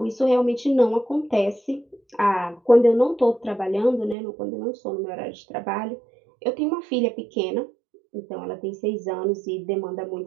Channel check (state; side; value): drops out; left; at 4.2 s